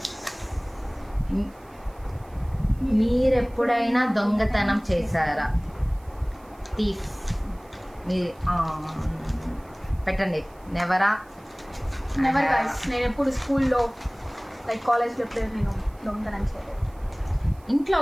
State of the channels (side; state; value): right; noise; hiss, 29 dB below the sound